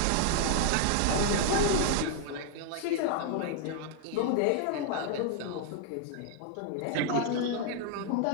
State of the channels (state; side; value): different; both; correlation 0.00